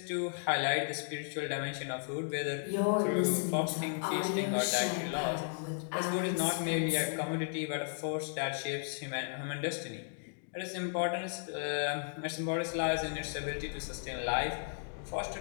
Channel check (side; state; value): right; silent; digital silence